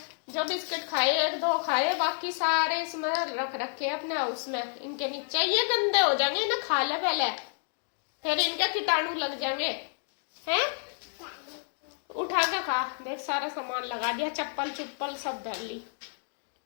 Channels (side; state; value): right; silent; 58 dB below the other